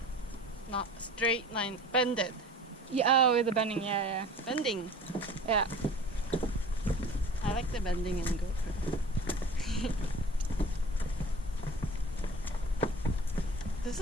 Not straight line. Bended. Yeah, oh, the bending. Yeah, yeah. Bending. Yeah. I like the bending in GoPro. This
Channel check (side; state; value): both; normal; correlation 0.42